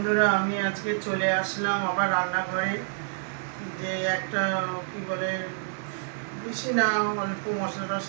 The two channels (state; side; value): silent; left; 60 dB below the other